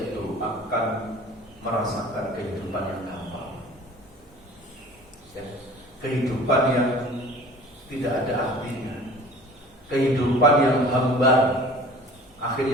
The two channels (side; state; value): both; normal; correlation 0.45